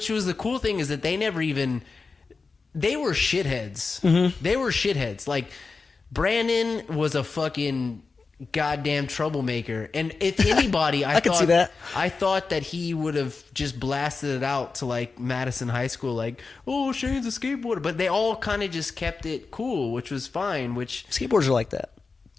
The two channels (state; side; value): quieter; right; 4.3 dB